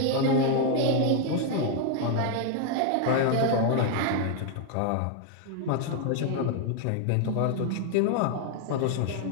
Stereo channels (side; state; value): both; different; correlation 0.00